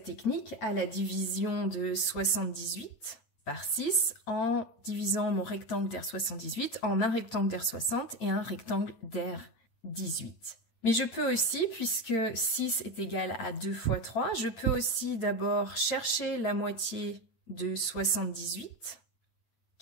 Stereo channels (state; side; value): late; right; 8.8 ms